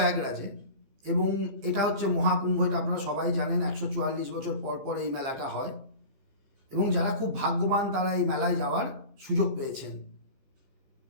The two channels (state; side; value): late; left; 15 ms